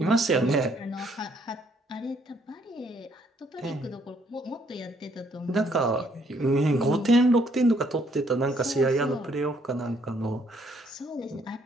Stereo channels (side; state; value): both; normal; correlation 0.68